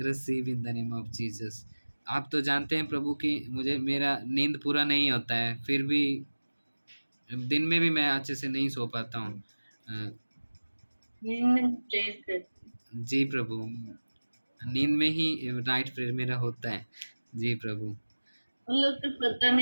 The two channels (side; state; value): both; inverted; correlation -1.00